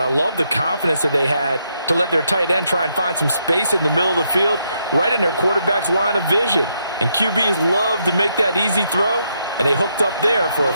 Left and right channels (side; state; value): both; inverted; correlation -0.77